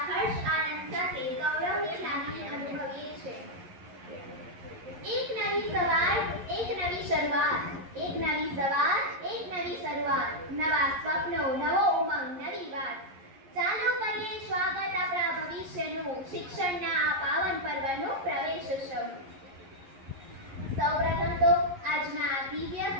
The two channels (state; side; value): late; left; 11 ms